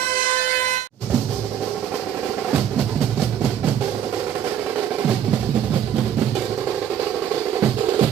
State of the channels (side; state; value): left; quieter; 9.6 dB